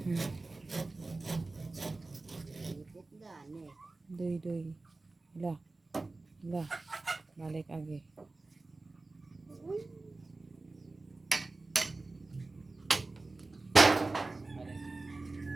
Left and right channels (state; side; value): quieter; left; 3.4 dB